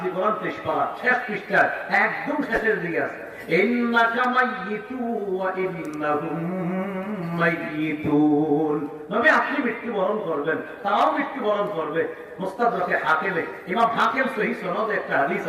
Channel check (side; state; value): both; identical; correlation 1.00